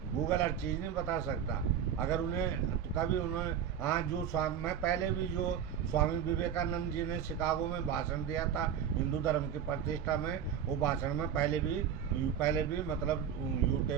गूगल हर चीज़ नहीं बता सकता। अगर उन्हें तो कभी उन्होंने, हाँ, जो मैं पहले भी जो स्वामी विवेकानंद जी ने शिकागो में भाषण दिया था हिंदू धर्म की प्रतिष्ठा में, वो भाषण में पहले भी मतलब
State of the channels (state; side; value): quieter; left; 8.5 dB